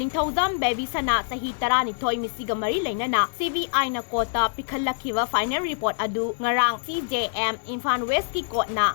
ꯕꯦꯕꯤꯁꯅꯥ ꯆꯍꯤ 12 ꯃꯤꯁꯤꯒ ꯃꯔꯤ ꯂꯩꯅꯅ CBIꯅ ꯀꯣꯔꯠꯇ ꯄꯤꯈꯠꯂꯛꯈꯤꯕ ꯐꯥꯏꯅꯦꯜ ꯔꯤꯄꯣꯔꯠ ꯑꯗꯨ ꯉꯔꯥꯡ CJM ꯏꯝꯐꯥꯜ ꯋꯦꯁꯀꯤ ꯀꯣꯔꯠꯅ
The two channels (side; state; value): right; silent; digital silence